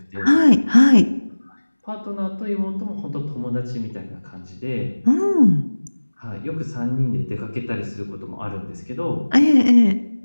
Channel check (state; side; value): inverted; both; correlation -1.00